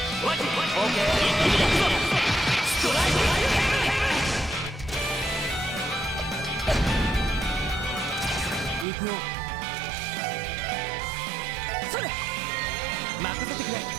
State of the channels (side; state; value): left; drops out; at 8.8 s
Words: オッケー。ストライク。行くよ。それ任せてくれ。